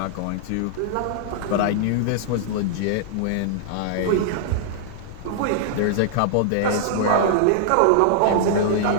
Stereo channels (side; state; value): both; different; correlation -0.01